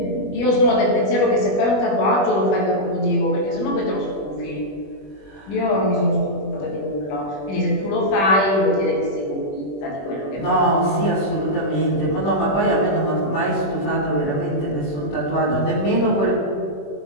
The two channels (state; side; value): late; right; 21 ms